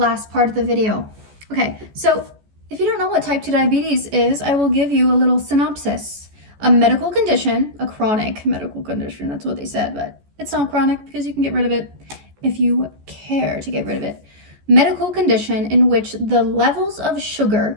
part of the video. Okay, so if you don't know what type 2 diabetes is, I will give you a little synopsis. A medical condition, a chronic medical condition, that's what they said, but it's not chronic because you can get rid of it if you care to get rid of it. Medical condition in which the levels of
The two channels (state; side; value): late; left; 14 ms